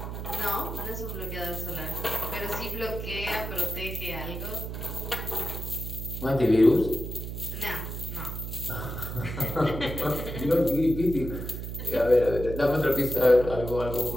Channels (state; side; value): noise; right; hum, 6 dB below the sound